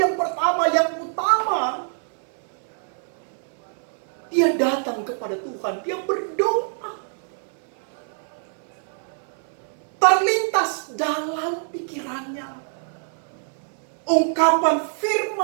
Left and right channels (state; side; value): silent; left; 62 dB below the other